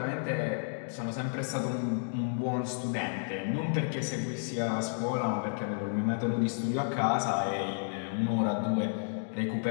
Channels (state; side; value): silent; right; digital silence